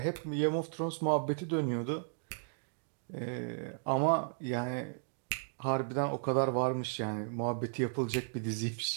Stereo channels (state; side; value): silent; left; digital silence